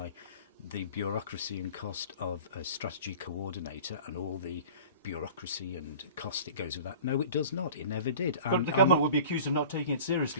the bureaucracy and cost of a strategy coordinator and all the bureaucracy and cost that goes with that? No, it does not. It never did. But the government would be accused of not taking it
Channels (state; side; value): inverted; both; correlation -0.41